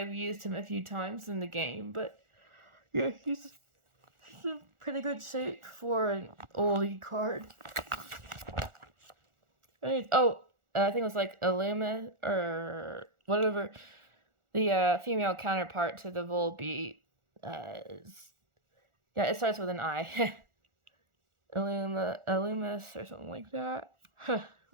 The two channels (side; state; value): left; late; 1.4 ms